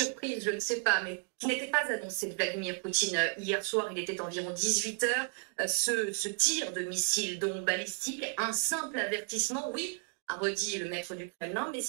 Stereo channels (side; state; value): left; quieter; 32.6 dB